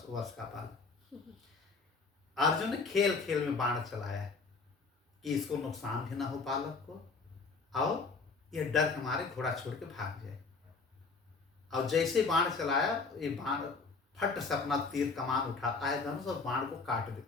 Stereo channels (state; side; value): quieter; right; 4.4 dB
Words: वर्ष का बालक। अर्जुन ने खेल खेल में बाण चलाया कि इसको नुकसान भी ना हो बालक को, और ये डर के मारे घोड़ा छोड़ के भाग जाए। और जैसे बाण चलाया, ये बाण फट से अपना तीर कमान उठाता है धनुष और बाण को काट